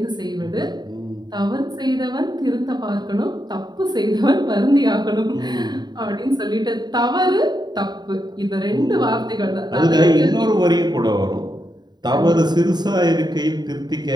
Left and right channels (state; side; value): late; left; 0.20 ms